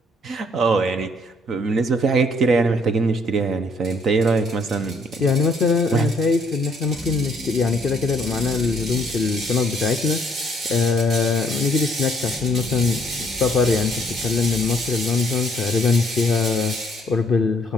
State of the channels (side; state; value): both; normal; correlation 0.65